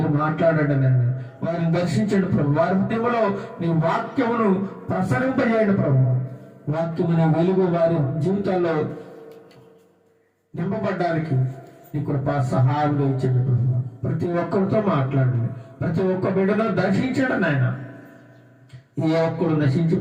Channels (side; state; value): both; identical; correlation 1.00